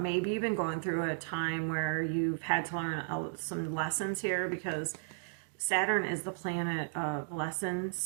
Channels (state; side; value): silent; left; digital silence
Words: maybe you've been going through a time where you've had to learn some lessons here, because Saturn is the planet of